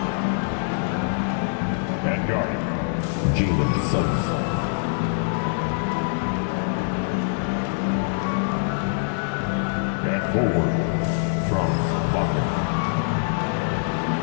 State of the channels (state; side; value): silent; right; 63 dB below the other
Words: At guard, Jalen Suggs. At forward, Franz Wagner.